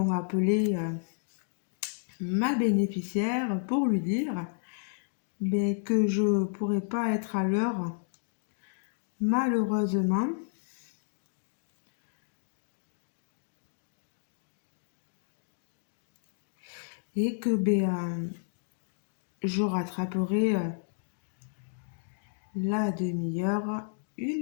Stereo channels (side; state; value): right; silent; digital silence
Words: appelé ma bénéficiaire pour lui dire que je ne pourrais pas être à l'heure, malheureusement. Et que je rattraperai la demi-heure